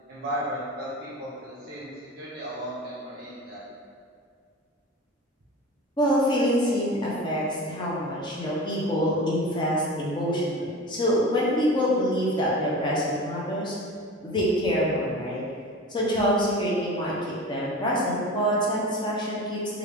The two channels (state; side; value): normal; both; correlation 0.33